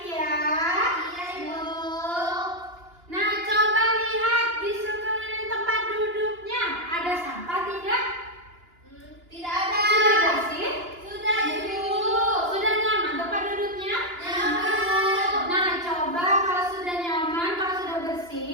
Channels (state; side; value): late; left; 2.9 ms